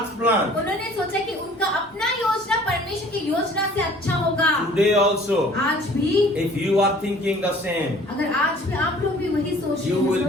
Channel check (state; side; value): normal; both; correlation 0.52